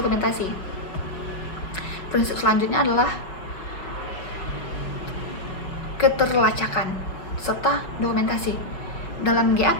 Prinsip selanjutnya adalah keterlacakan serta dokumentasi. Dalam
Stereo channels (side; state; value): right; late; 5.4 ms